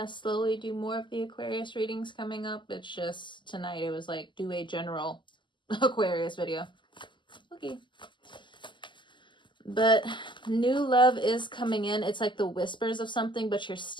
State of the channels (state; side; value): late; right; 0.23 ms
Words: slowly do more of the Aquarius readings coming up. It's just tonight it was like do a general Aquarius video. Okay. But new love is coming in. It's like the whispers of something, but you're